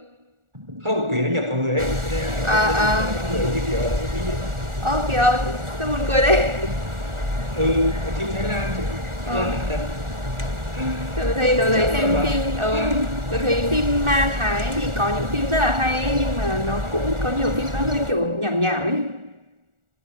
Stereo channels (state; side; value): late; left; 1.4 ms